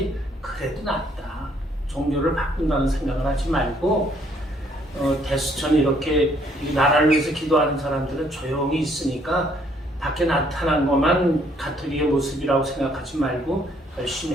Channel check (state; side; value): normal; both; correlation 0.66